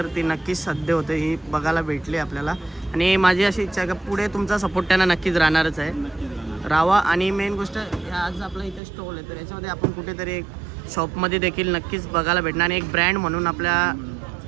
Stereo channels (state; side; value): drops out; left; at 8.8 s